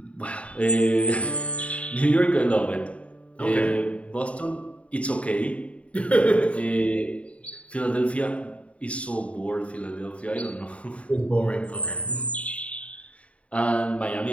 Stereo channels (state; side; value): late; right; 0.064 ms